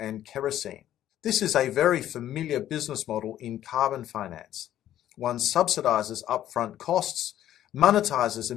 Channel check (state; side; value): quieter; right; 12.1 dB